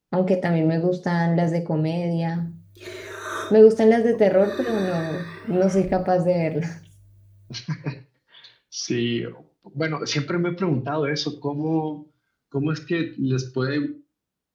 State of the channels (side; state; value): both; identical; correlation 1.00